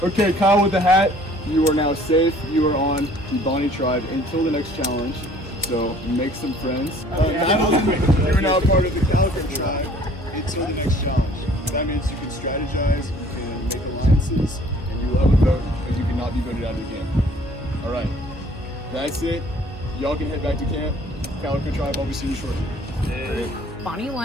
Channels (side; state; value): both; normal; correlation 0.55